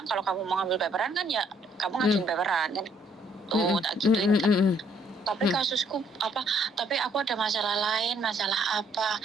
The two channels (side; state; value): both; normal; correlation 0.66